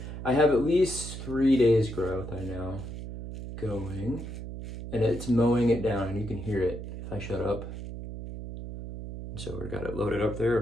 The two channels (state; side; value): noise; right; hum, 7 dB below the sound